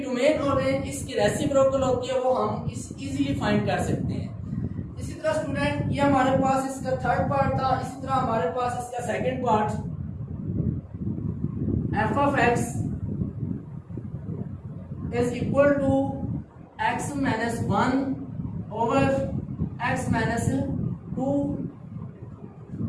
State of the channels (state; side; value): identical; both; correlation 1.00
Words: और रेंज इसकी रेसिप्रोकल होती है, वो हम इजीली फाइंड कर सकते हैं। इसी तरह स्टूडेंट ये हमारे पास इसका थर्ड पार्ट था। इसी तरह हमारे पास इसका second part f(x) is equal to x - 1/x - 2